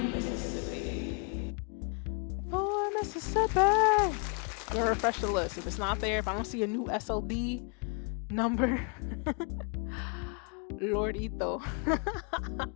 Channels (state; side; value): quieter; right; 37.2 dB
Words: Mississippi. 4 Mississippi. I'm gonna refresh the list. If it's not there, if I don't see a new SLD number, Lord Ito.